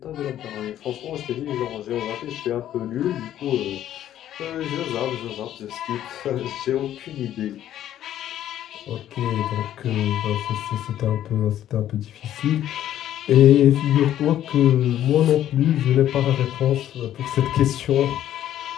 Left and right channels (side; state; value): right; quieter; 11.7 dB